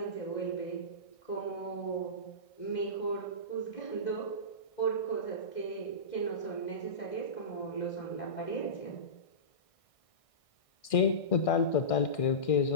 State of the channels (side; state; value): right; late; 1.6 ms